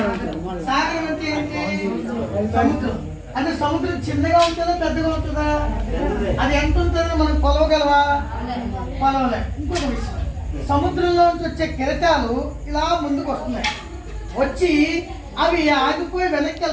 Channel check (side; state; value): both; identical; correlation 1.00